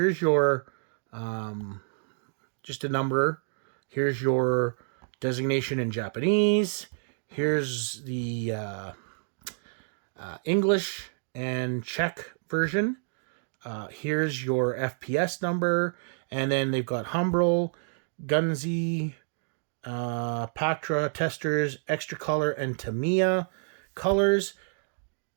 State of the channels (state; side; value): silent; left; digital silence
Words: your just a number. Here's your designation in Japanese. Here's the English and Czech version. Here's your FPS number, and then they've got Humbrol, Gunzi, Pactra, Testers, Extra Color, and Tamiya colors.